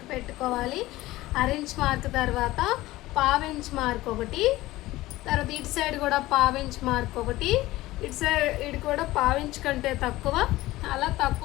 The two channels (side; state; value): right; quieter; 17.6 dB